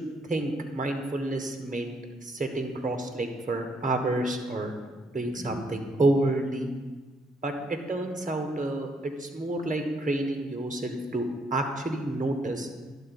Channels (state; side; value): normal; both; correlation 0.71